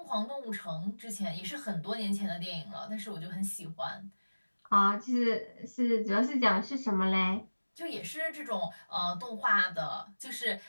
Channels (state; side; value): inverted; both; correlation -1.00